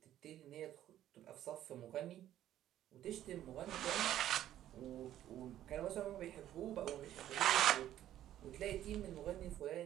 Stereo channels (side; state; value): left; quieter; 12.3 dB